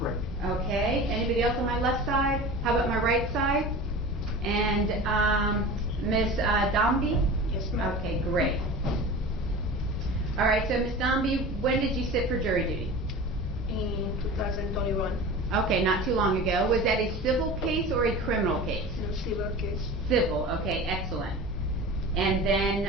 Okay, anybody else on my left side? How about my right side? And Ms. Dombey? Yes, ma'am. Okay, great. All right, so Ms. Dombey, when did you sit for jury duty? In 2021, Okay, not too long ago. Was that a civil case or a criminal case? in a civil case. Civil, okay, excellent. And then,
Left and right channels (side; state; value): both; normal; correlation 0.35